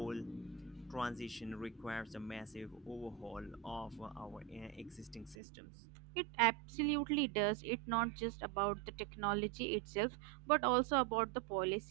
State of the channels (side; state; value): left; drops out; at 5.4 s